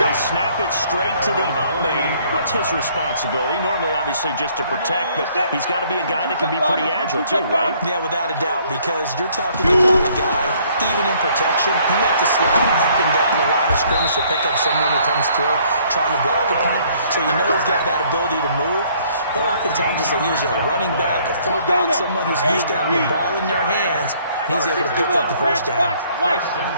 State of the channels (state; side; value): inverted; both; correlation -0.62